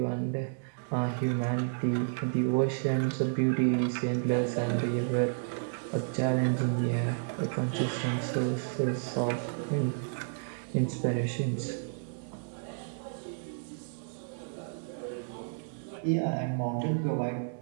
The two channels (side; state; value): left; silent; digital silence